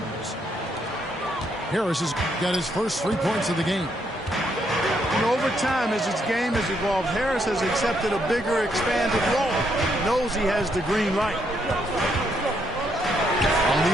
Harris has got his first 3 points of the game. And over time, as his game has evolved, Harris has accepted a bigger, expanded role. He knows he has the green light. On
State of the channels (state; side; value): normal; both; correlation 0.75